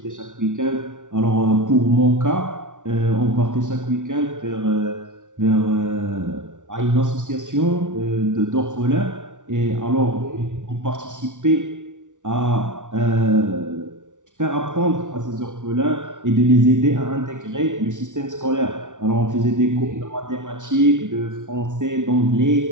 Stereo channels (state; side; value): late; left; 0.87 ms